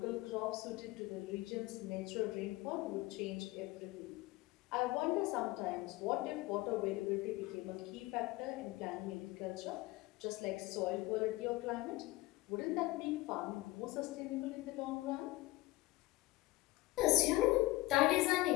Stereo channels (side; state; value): right; quieter; 19.6 dB